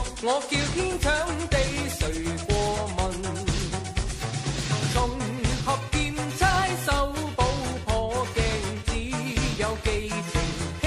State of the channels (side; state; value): both; identical; correlation 1.00